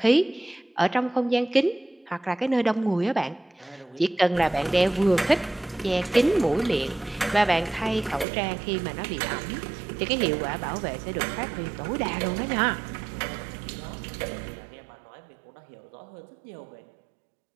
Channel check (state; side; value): drops out; left; at 8.2 s